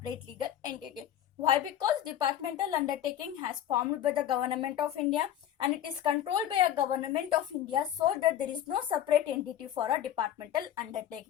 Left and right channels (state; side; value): quieter; right; 11.1 dB